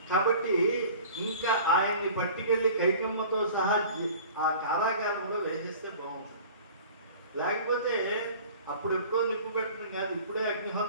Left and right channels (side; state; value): both; inverted; correlation -0.44